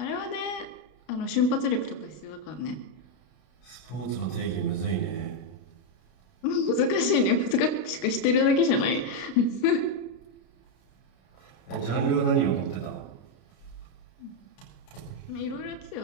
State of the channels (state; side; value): late; right; 32 ms